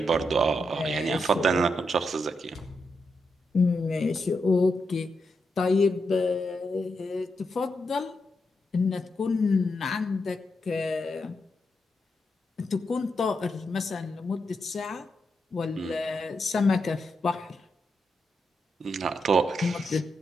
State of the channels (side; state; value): both; normal; correlation 0.84